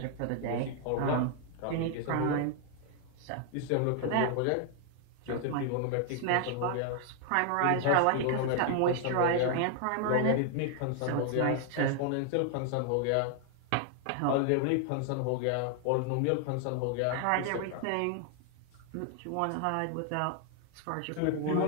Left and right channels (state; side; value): different; both; correlation 0.00